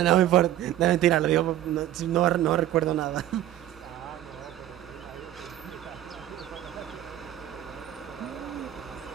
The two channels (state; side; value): quieter; left; 12.7 dB